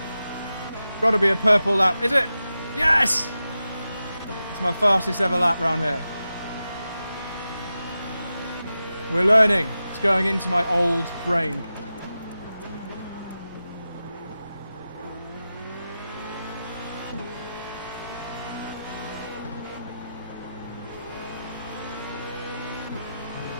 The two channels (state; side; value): inverted; both; correlation -0.92